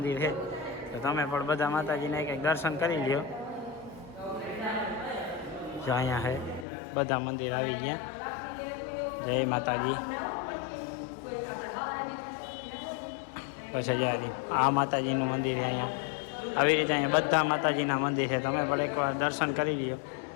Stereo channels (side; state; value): right; drops out; at 6.7 s